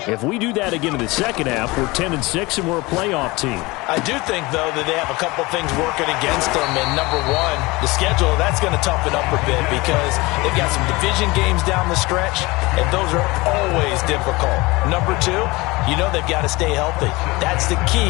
if we do that again in the second half, we're 10-6 and we're a playoff team. I do think, though, that they have a couple things working against them, and number one, the schedule, that's going to toughen up a bit, because they've got some division games down the stretch, and those are always difficult. Number two, you know they've got to stay healthy. That's the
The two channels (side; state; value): right; quieter; 22.8 dB